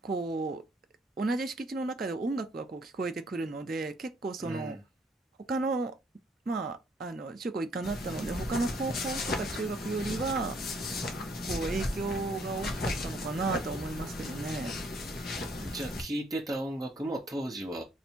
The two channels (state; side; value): normal; both; correlation 0.66